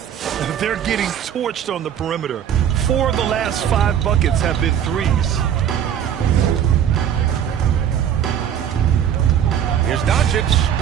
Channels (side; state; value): left; quieter; 9.4 dB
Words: They're getting torched on the perimeter. 4 of the last 5 buckets have been threes. Here's Doncic.